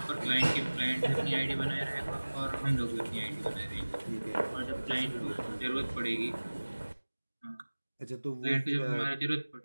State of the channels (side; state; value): both; inverted; correlation -1.00